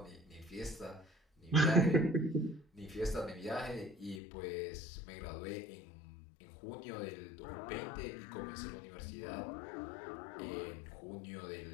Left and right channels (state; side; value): drops out; right; at 4.2 s